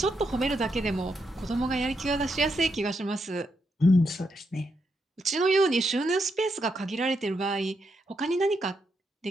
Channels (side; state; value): both; normal; correlation 0.81